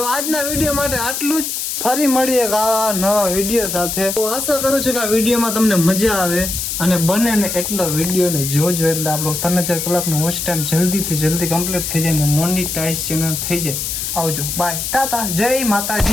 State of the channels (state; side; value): noise; left; hiss, 3 dB below the sound